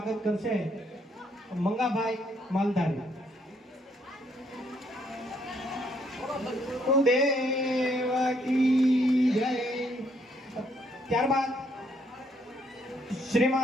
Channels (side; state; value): both; normal; correlation 0.70